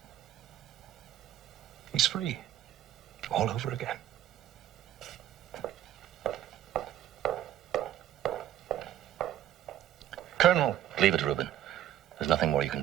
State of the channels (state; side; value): quieter; left; 11.9 dB